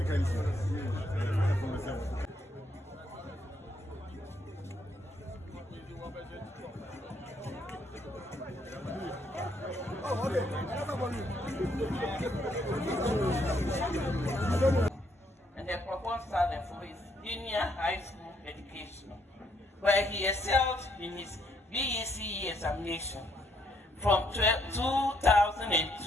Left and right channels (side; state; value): both; normal; correlation 0.72